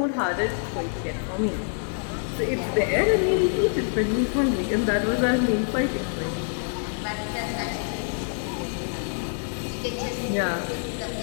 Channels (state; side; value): silent; right; 60 dB below the other